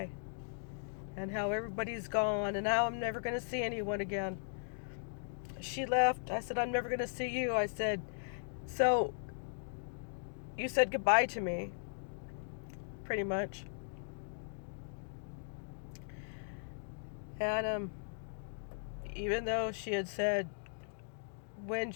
and how everybody's gone, and now I'm never going to see anyone again. She left. I said, I'm never going to see you. I said, so you said goodbye to me, pretty much. And even though she had said when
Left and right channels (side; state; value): right; silent; digital silence